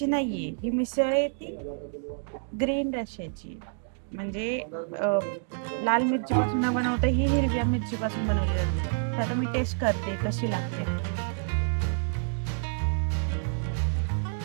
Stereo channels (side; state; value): left; silent; digital silence